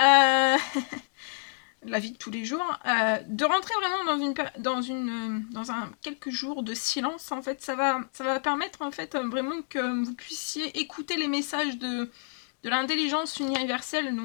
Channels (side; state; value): right; silent; digital silence